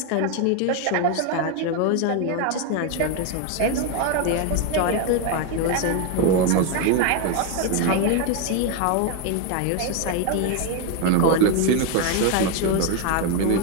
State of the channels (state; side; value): different; both; correlation 0.02